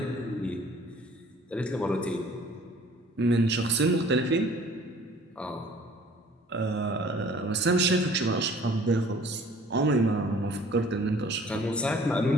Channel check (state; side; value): normal; both; correlation 0.52